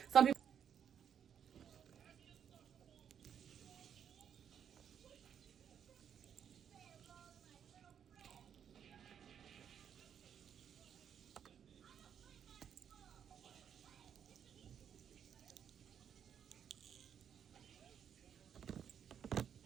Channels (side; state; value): left; quieter; 8.4 dB